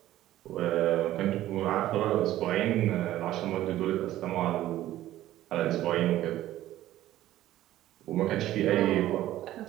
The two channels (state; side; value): quieter; left; 14.1 dB